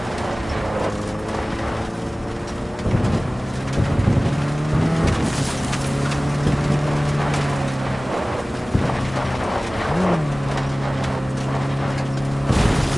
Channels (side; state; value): both; normal; correlation 0.98